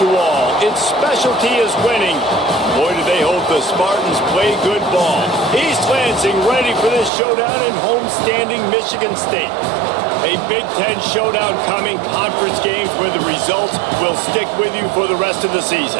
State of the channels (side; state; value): left; drops out; at 7.1 s